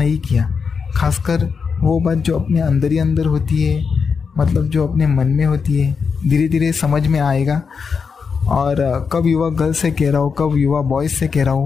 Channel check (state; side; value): quieter; right; 5.7 dB